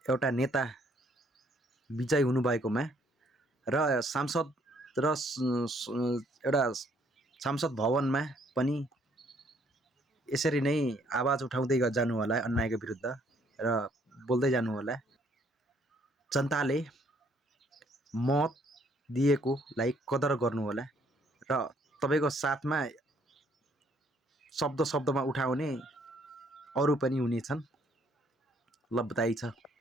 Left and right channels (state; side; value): normal; both; correlation 0.65